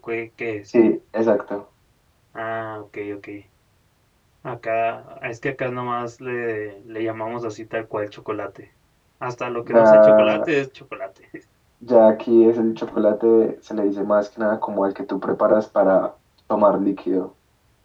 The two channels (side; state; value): both; identical; correlation 1.00